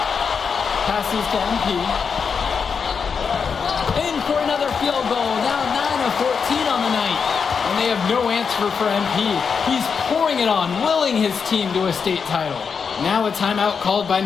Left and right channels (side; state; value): right; quieter; 6.0 dB